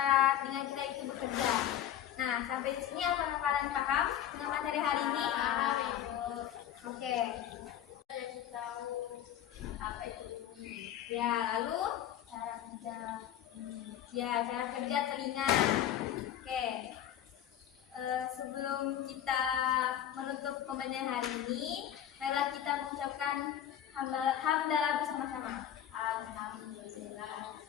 telinga kita itu bekerja. Nah, sampai di sini apakah kalian paham dengan materi hari ini? Paham, Ibu. Oke. Jadi tahu apa itu bunyi. Ya, lalu cara kerja ya, cara kerja telinga. Oke. Sebelum kita menutup pembelajaran hari ini, marilah kita mengucapkan hamdalah bersama-sama. Alhamdulillah.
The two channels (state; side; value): quieter; right; 10.8 dB